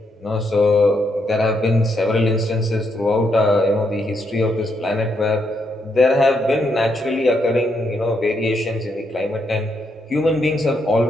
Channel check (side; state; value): both; normal; correlation 0.78